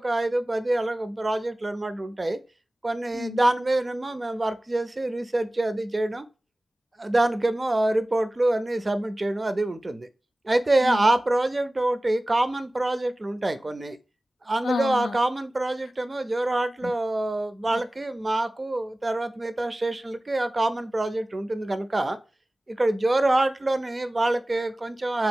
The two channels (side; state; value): both; normal; correlation 0.98